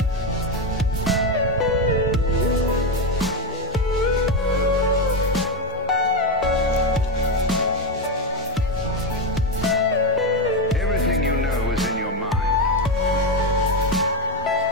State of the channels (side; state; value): both; normal; correlation 0.10